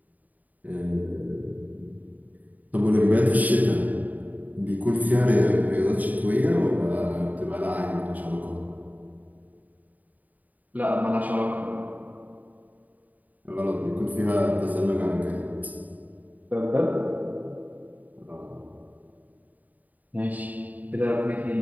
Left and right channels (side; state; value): left; late; 0.078 ms